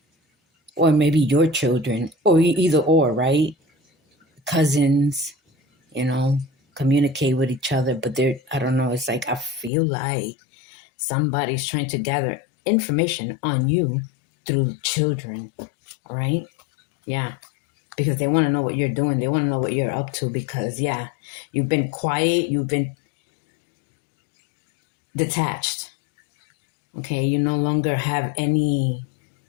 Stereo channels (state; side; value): drops out; right; at 9.7 s